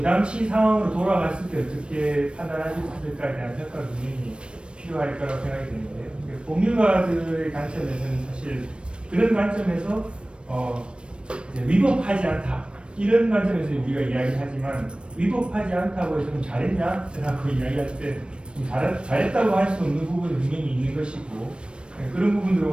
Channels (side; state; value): left; late; 0.057 ms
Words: 당시 상황으로 돌아갔을 때 어떻게 판단하셨을까에 대한 평가가 분명히 필요할 거라고 생각이 되는데요. 법률가들의 관점에서는 사실 그런 관점에서 이제 위법하지 않다 이런 관점에서 우리가 이야기하지만 위법하지 않다고 해서 좀 잘했냐? 라고 이야기할 때 잘했다고 할 수 없는 부분이 분명히 있는 것이고 그런 부분들을